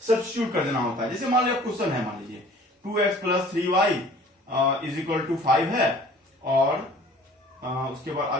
सब्स्टिट्यूट कर देना होता है। जैसे मान लीजिए क्वेश्चन है, मान लीजिए 2x plus 3y is equal to 5 है, और उसके बाद आ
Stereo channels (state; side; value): normal; both; correlation 0.50